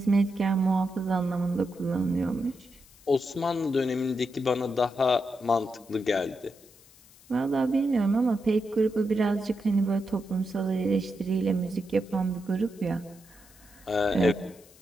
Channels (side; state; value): left; noise; hiss, 26 dB below the sound